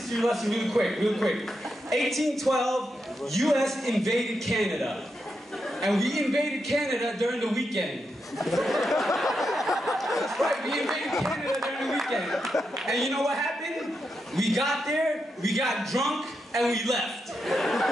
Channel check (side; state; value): both; normal; correlation 0.85